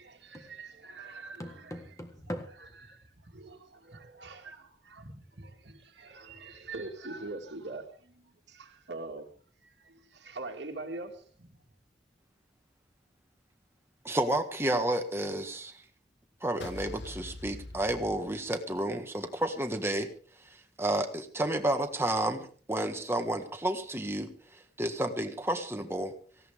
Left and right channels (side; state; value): both; normal; correlation 0.62